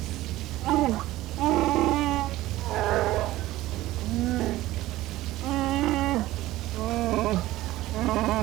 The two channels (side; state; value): left; quieter; 16.5 dB